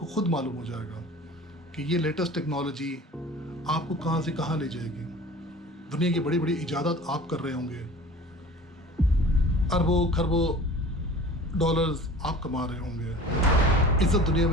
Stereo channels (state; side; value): normal; both; correlation 0.42